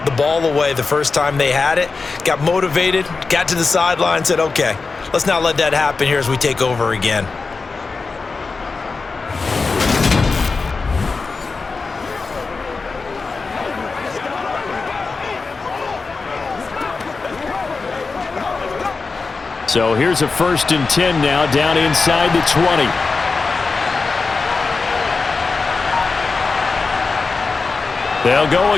the ball away the first time they had it. Got motivated, got to the sideline, said, okay, let's not let that happen here as we take over again. So here's a 1st and 10 now, down inside the 20. They'll go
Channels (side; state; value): right; quieter; 4.3 dB